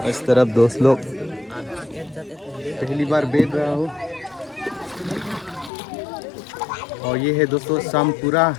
इस तरफ दोस्त लोग पहली बार बैठ रहा हूँ। और ये है दोस्तों सामपुरा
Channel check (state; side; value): drops out; right; at 5.7 s